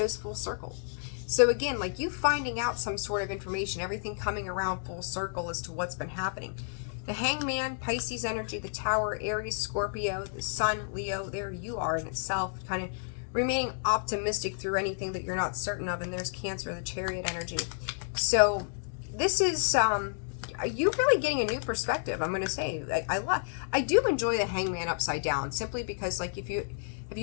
full circle. So again, like you finding out some sort of information, everything coming around full circle as to what's been happening. The Hangman, Pisces energy, the Tower, Aries, Scorpio, the Sun, Leo, there you are in itself, kind of remaining optimistic through anything that you're not certain of. And there's Cancer, the Chariot energy. So this is you really getting a new perspective. I'm going to say, I do enjoy the Hangman upside down, simply because, like, have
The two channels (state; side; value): silent; right; digital silence